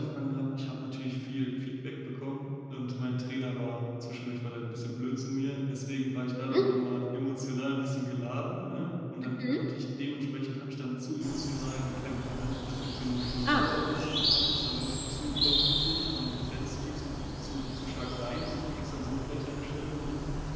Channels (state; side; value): identical; both; correlation 1.00